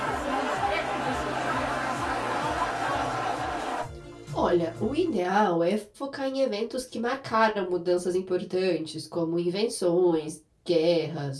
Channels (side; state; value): both; identical; correlation 1.00